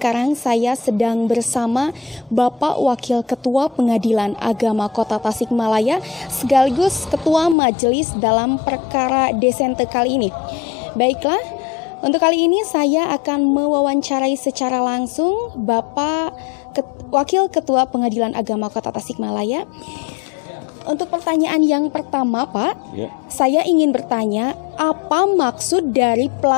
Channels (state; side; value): drops out; right; at 7.6 s